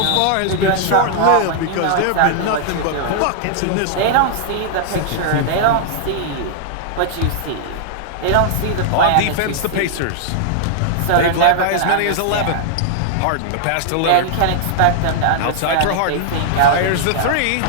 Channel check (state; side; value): different; both; correlation -0.01